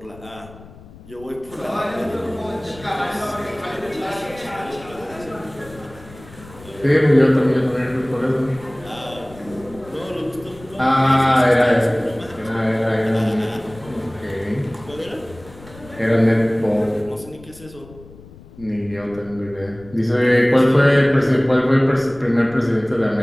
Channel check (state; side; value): noise; left; rumble, 20 dB below the sound